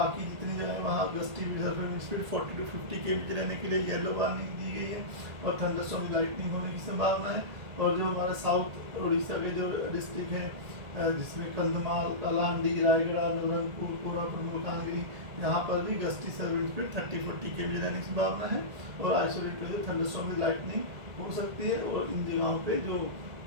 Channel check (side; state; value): left; late; 1.7 ms